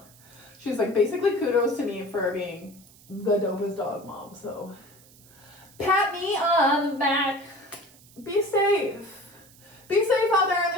she was like, basically kudos to me for being the dopest dog mom. So pat me on the back. Be safe. Be safe out there in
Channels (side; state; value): right; noise; hiss, 25 dB below the sound